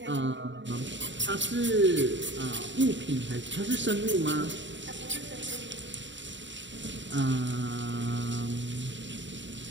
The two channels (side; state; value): left; late; 0.54 ms